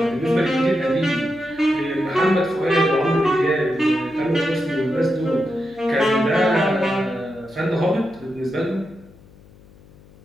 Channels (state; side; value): noise; left; hum, 25 dB below the sound